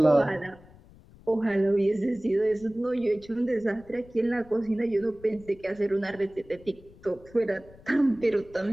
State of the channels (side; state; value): left; noise; rumble, 23 dB below the sound